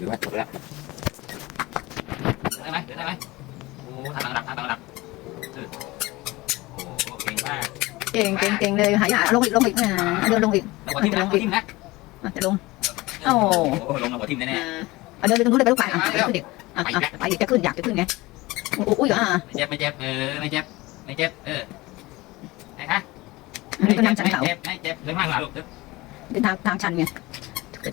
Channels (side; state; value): right; quieter; 20.8 dB